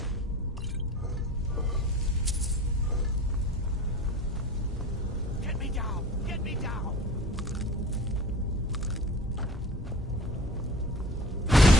Get me down! Get me down!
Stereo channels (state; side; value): normal; both; correlation 0.40